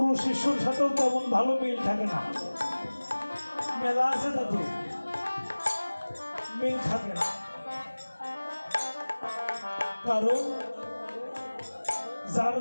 শিষ্যর সাথেও তেমন ভালো মিল থাকে না, মেলা আছে তাদের মিল থাকে না। কারণ যার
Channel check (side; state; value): both; inverted; correlation -1.00